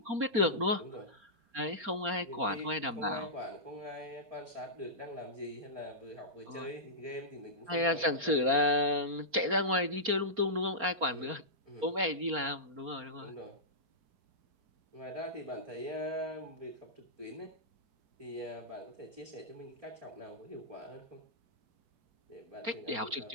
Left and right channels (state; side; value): late; left; 4.3 ms